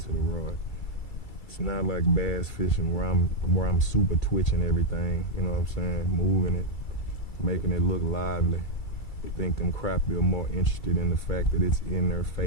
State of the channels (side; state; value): right; late; 2.3 ms